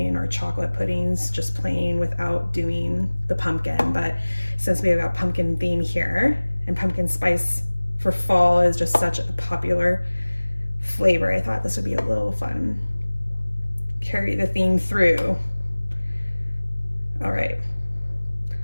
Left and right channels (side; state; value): both; inverted; correlation -1.00